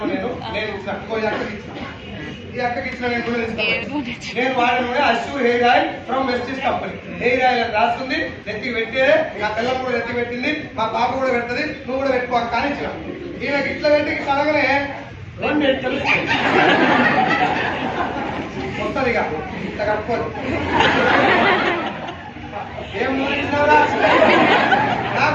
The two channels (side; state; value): both; identical; correlation 1.00